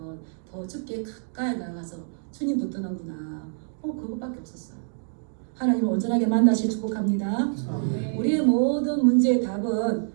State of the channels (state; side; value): silent; left; digital silence